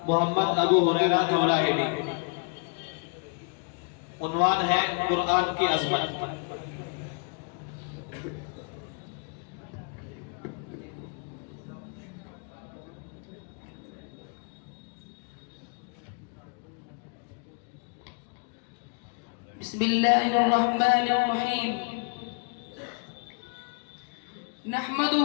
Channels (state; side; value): quieter; right; 37.2 dB